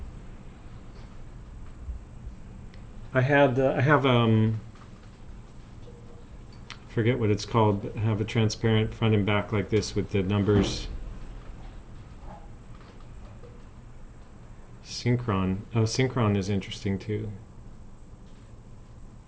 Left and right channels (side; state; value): both; identical; correlation 1.00